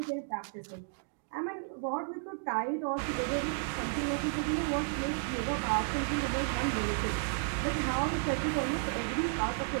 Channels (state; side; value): silent; left; digital silence